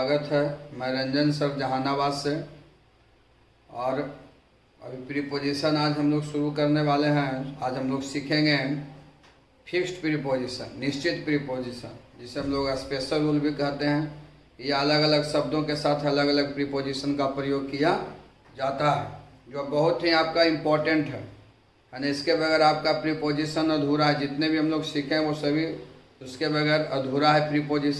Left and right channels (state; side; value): identical; both; correlation 1.00